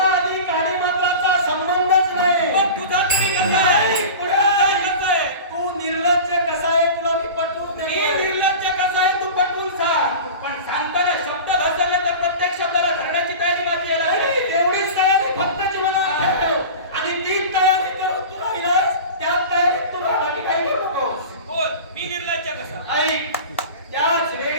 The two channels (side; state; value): both; inverted; correlation -0.33